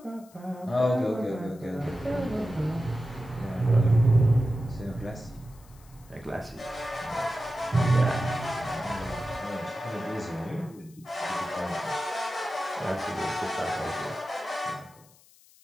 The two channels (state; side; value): noise; left; hiss, 27 dB below the sound